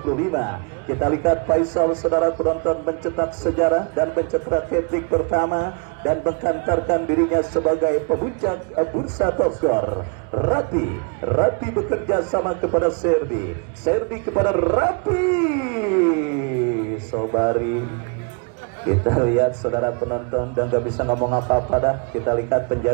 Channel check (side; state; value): left; quieter; 34.9 dB